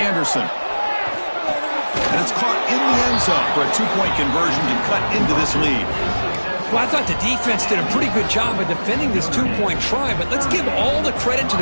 And it's caught in the end zone for a 2-point conversion to cut into this lead. Well, I thought the defense did a pretty good job of defending this 2-point try, but let's give all the credit to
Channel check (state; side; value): inverted; both; correlation -1.00